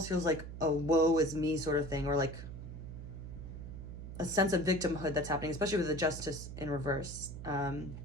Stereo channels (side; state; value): right; noise; hum, 10 dB below the sound